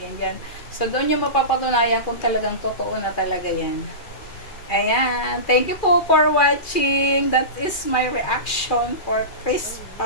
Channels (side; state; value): right; late; 2.4 ms